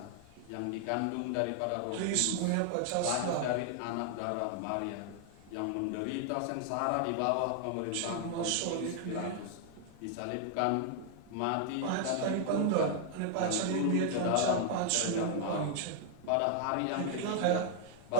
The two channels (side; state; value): both; different; correlation 0.00